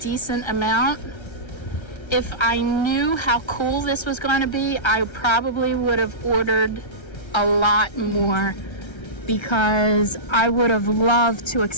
amount. If I knew how cool this was going to be, I probably would have ordered a lot more, because I would have loved to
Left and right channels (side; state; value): right; late; 1.3 ms